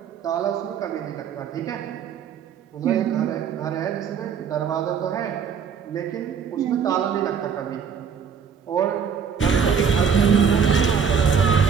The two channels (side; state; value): left; quieter; 6.8 dB